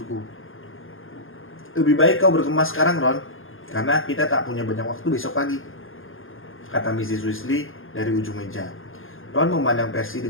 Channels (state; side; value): late; right; 0.59 ms